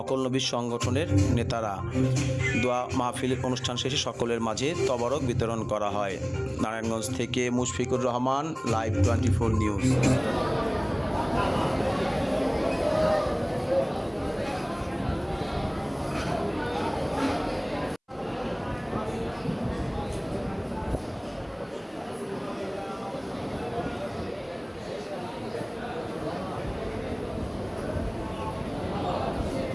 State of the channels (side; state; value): both; identical; correlation 1.00